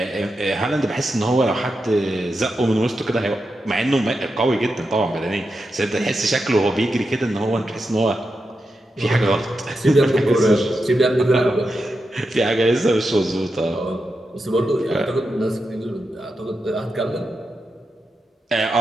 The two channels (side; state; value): both; normal; correlation 0.88